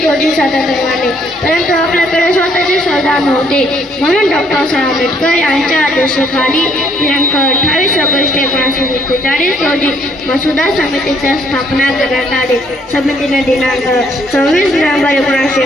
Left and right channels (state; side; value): normal; both; correlation 0.66